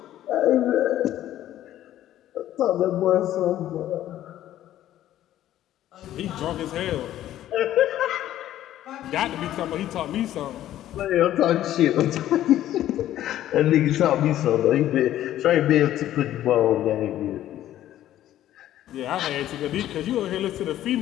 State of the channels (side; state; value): right; quieter; 12.8 dB